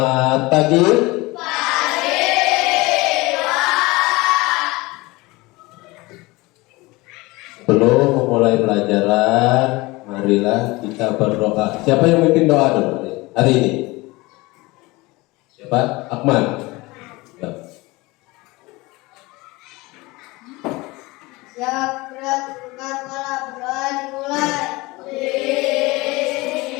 pagi. Sebelum memulai pelajaran, marilah kita berdoa. Siapa yang memimpin doa dulu hari ini? Siapa? Akmal. Ya. Siap, berat, bukan malam, berdoa dimulai.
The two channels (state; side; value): quieter; right; 22.3 dB